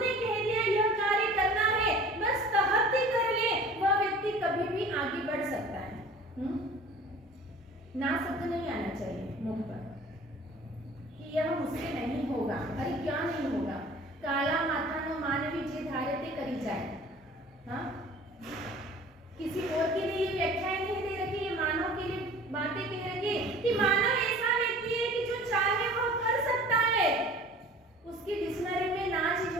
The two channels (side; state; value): both; normal; correlation 0.45